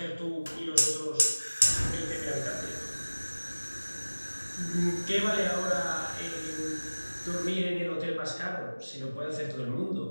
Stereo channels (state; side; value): inverted; both; correlation -1.00